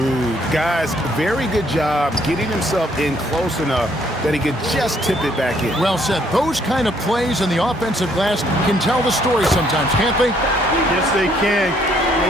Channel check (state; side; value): normal; both; correlation 0.67